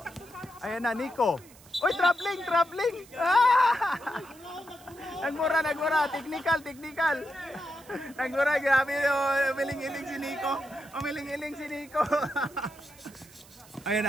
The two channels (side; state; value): right; noise; hiss, 23 dB below the sound